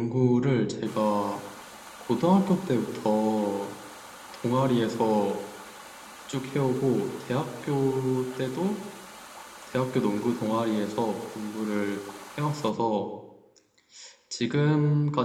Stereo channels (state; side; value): identical; both; correlation 1.00